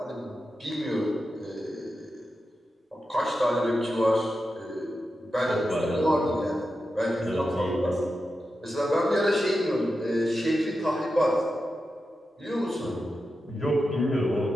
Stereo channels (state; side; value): normal; both; correlation 0.90